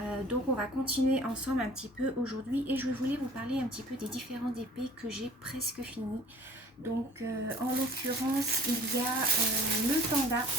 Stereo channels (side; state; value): both; normal; correlation 0.49